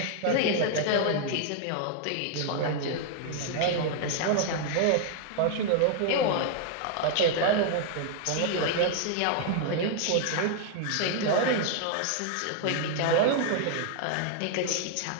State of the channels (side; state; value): both; different; correlation 0.00